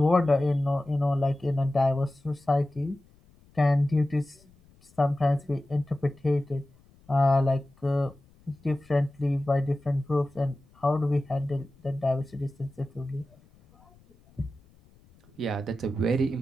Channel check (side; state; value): left; noise; rumble, 29 dB below the sound